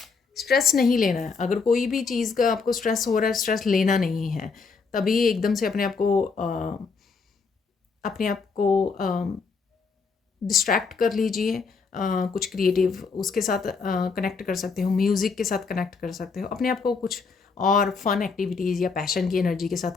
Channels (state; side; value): quieter; right; 4.9 dB